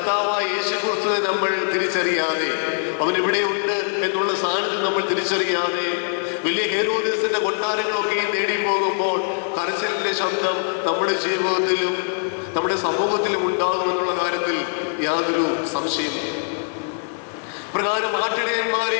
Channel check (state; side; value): silent; right; 64 dB below the other